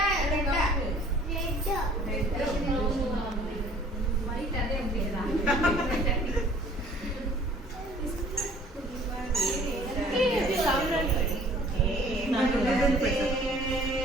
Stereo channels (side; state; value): both; normal; correlation 0.53